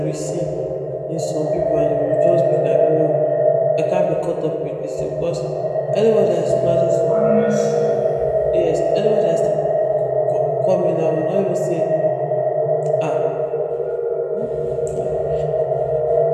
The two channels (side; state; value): both; identical; correlation 1.00